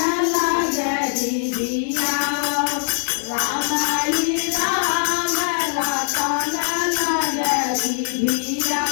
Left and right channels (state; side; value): silent; right; 65 dB below the other